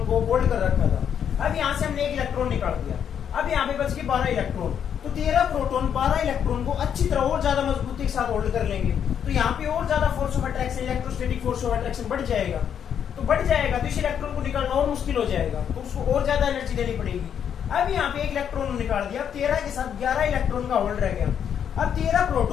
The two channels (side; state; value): right; quieter; 8.5 dB